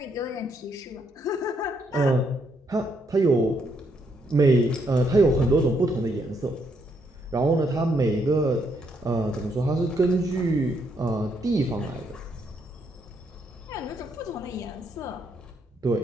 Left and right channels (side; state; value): both; normal; correlation 0.74